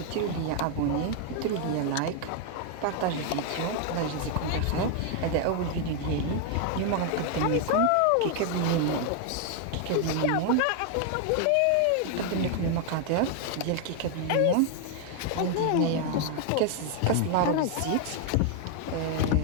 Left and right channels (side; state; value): both; different; correlation 0.00